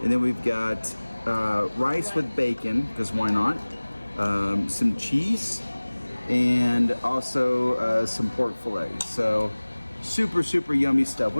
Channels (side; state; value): both; inverted; correlation -1.00